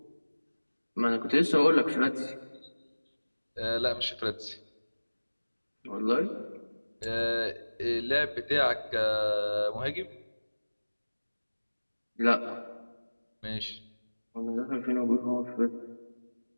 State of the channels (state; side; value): inverted; both; correlation -1.00